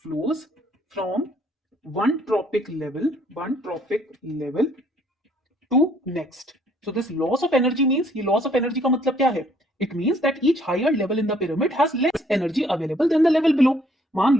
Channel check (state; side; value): normal; both; correlation 0.63